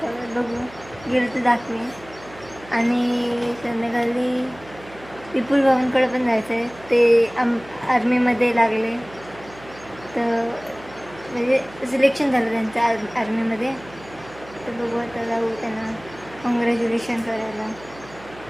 बघू गेलं तर दाखवेन. आणि संध्याकाळी विपुल भावांकडे पण जायचं आहे. ते आर्मीमध्ये लागले तर म्हणजे सिलेक्शन झालं त्यांचं आर्मीमध्ये. तर बघू आता जाऊ त्यांना कॉंग्रॅच्युलेशन करायला.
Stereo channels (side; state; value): right; noise; hum, 20 dB below the sound